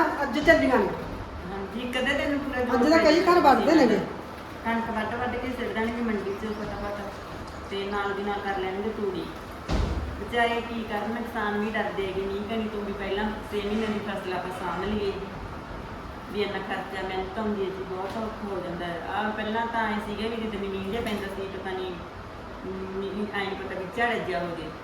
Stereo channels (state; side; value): identical; both; correlation 1.00